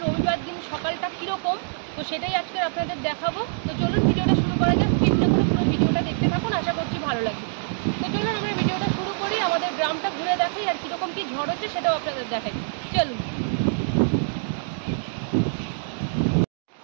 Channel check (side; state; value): left; silent; digital silence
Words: রবিবার দিন সকালটা কীরকম, তো সেটাই আজকে আপনাদের দেখাবো। তো চলুন ভিডিওটা শুরু করা যাক। স্কিপ না করে পুরো ভিডিওটা দেখতে থাকুন, আশা করছি ভালো লাগবে। তো চলুন আমরা ভিডিওটা শুরু করি, আমাদের গ্রামটা ঘুরে দেখাই আর কীরকম কী ঝড় হচ্ছে সেটাও আপনাদের দেখাই। চলুন।